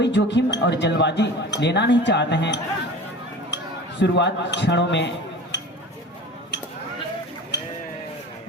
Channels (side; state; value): both; normal; correlation 0.37